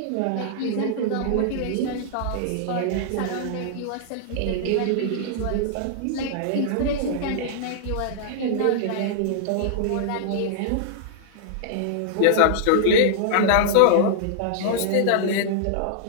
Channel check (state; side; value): different; both; correlation -0.01